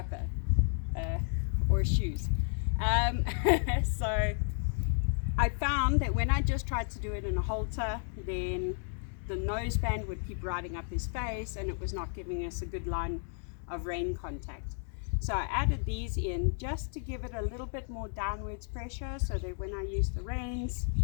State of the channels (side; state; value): right; silent; 56 dB below the other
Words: or shoes. So I found that when I just tried to do it in a halter, then the noseband would keep riding up his face and it was not giving us a good line of rein contact. So I added these in just to give it a little bit more downwards pressure so that when I use the reins,